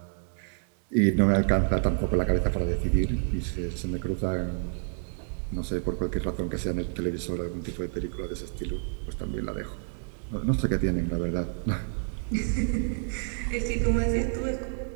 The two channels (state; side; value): silent; left; digital silence